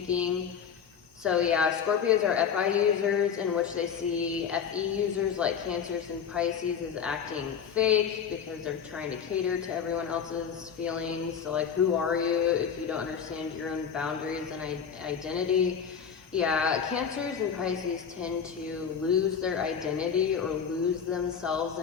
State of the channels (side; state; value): right; quieter; 7.2 dB